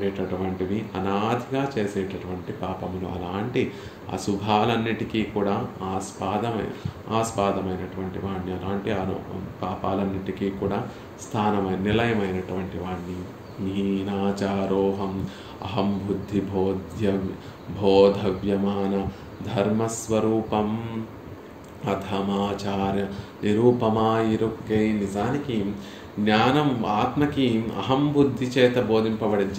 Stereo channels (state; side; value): identical; both; correlation 1.00